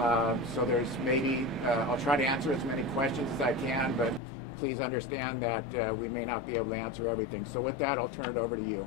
So there's maybe, I'll try to answer as many questions as I can, but please understand that we may not be able to answer everything. So with that, I'll turn it over to you.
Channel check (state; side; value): drops out; right; at 4.2 s